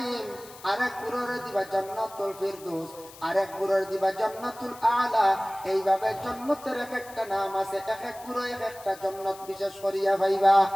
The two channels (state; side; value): noise; left; hiss, 19 dB below the sound